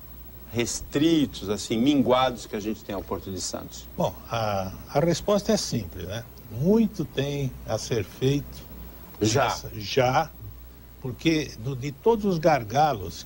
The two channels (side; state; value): both; identical; correlation 1.00